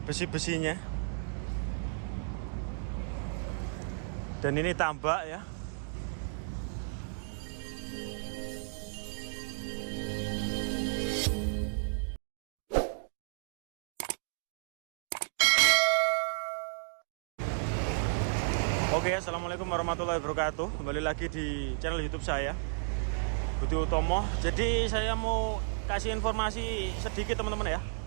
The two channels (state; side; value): silent; left; digital silence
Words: Dan ini tambak ya. Oke, assalamualaikum warahmatullahi wabarakatuh. Kembali lagi di channel YouTube saya, Budi Utomo. Jadi saya mau kasih informasi sedikit teman-teman ya.